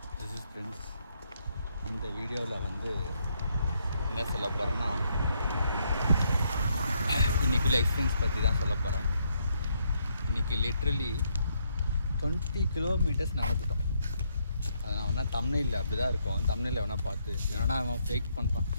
this is friends. இந்த வீடியோவில் வந்து என்ன சொல்ல போகிறேன்னா, இன்றைக்குள்ள எக்ஸ்பீரியன்ஸ் பற்றி தான் சொல்ல போகிறேன். இன்றைக்கி லிட்ரலி 20 கிலோமீட்டர்ஸ் நடந்துட்டோம். அது நான் வேணால் தமிழில் அப்படி தான் இருக்கும். தமிழில் வேணால் பார்த்து ஏன்னா அவன் ஃபேக் பண்ணுறான்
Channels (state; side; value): inverted; both; correlation -0.74